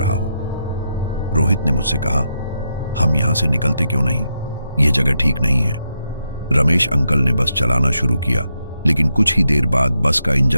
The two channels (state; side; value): inverted; both; correlation -0.83